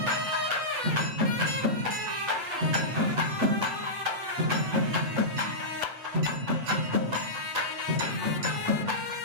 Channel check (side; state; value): left; late; 8.5 ms